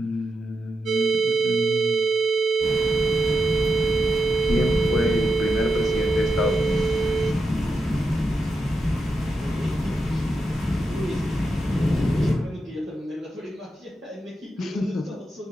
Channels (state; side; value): normal; both; correlation 0.87